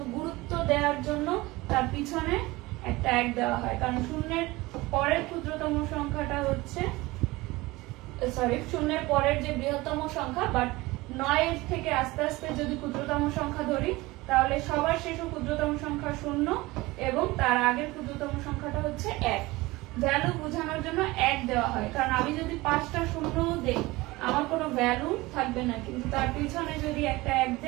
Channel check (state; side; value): quieter; left; 20.9 dB